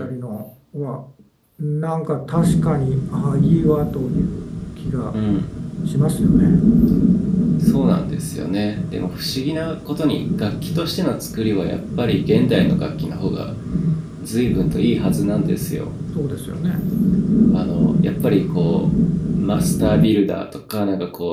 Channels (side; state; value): both; identical; correlation 1.00